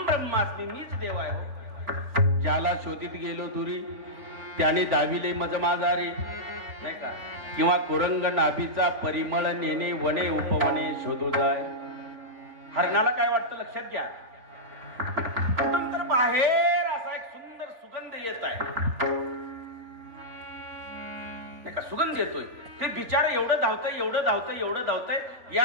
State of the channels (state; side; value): late; left; 3.5 ms